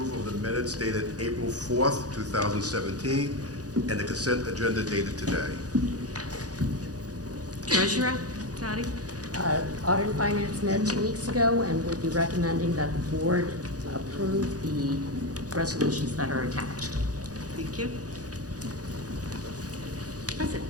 of the minutes dated April 4th, 2017, and the consent agenda dated today. Treasurer, Patty. Audit and Finance met 2 weeks ago, and we'll be recommending that the board approve the resolutions that are attached. Thank you. President.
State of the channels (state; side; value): late; left; 0.68 ms